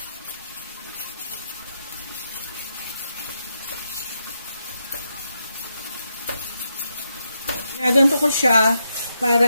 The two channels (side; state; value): both; inverted; correlation -0.83